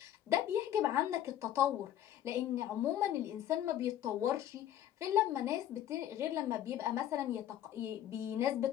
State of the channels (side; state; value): right; quieter; 11.7 dB